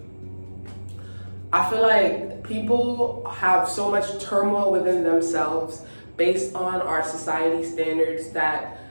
I feel like people have so much turmoil within themselves based on our society standards that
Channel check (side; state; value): both; inverted; correlation -1.00